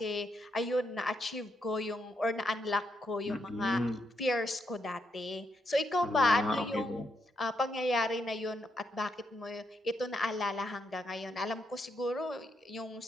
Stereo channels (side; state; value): both; normal; correlation 0.79